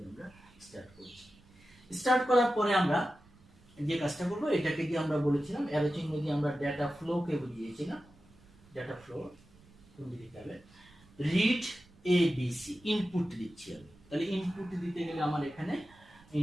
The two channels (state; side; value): noise; right; rumble, 26 dB below the sound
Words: আমরা স্টার্ট করছি। স্টার্ট করার পরে আমরা যে কাজটা করব, এটাকে দিয়ে আমরা বলেছিলাম অ্যারো চিহ্ন দিয়ে আমরা ডেটা ফ্লোকে বুঝিয়েছিলাম। ডেটা ফ্লো কোন দিকে হবে, read A B C, input দিচ্ছি আমি। তাহলে ইনপুট দিতে গেলে আমার এখানে